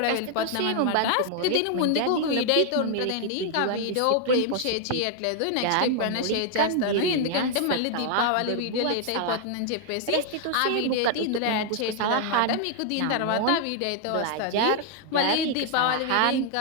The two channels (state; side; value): different; both; correlation 0.00